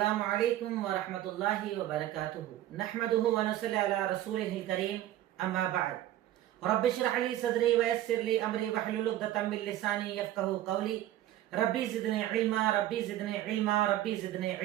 علیکم ورحمۃ اللہ وبرکاتہ نحمدہ ونصلی علی رسولہ الکریم اما بعد رب اشرح لی صدری ویسر لی امری واحلل عقدۃ من لسانی یفقہوا قولی ربی زدنی علما ربی زدنی علما ربی زدنی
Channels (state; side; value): quieter; left; 13.5 dB